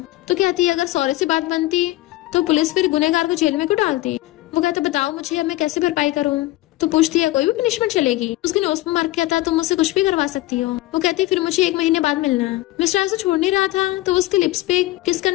तो कहती है अगर सॉरी से बात बनती तो पुलिस फिर गुनहगार को जेल में क्यों डालती। वो कहता बताओ मुझे अब मैं कैसे भरपाई करूँ। तो पूछती है कोई भी पनिशमेंट चलेगी। उसके नोज पर मार्क किया था तुम मुझसे कुछ भी करवा सकती हो। वो कहती फिर मुझे 1 महीने बाद मिलना है। मिस्टर हाई उसे छोड़ नहीं रहा था, तो उसके लिप्स पे किस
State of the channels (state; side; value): quieter; right; 17.5 dB